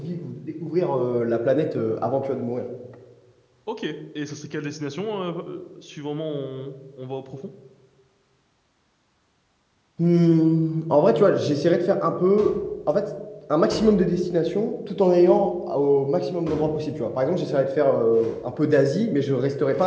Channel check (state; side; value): identical; both; correlation 1.00